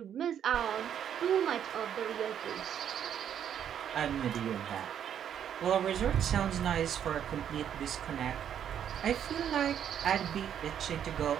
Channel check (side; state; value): left; quieter; 9.3 dB